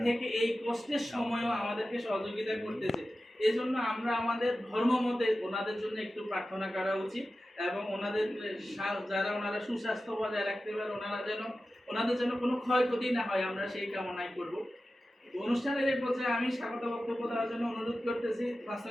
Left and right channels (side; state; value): both; normal; correlation 0.94